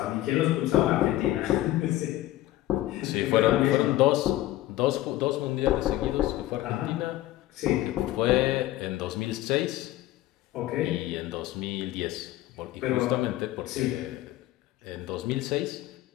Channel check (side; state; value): right; quieter; 15.4 dB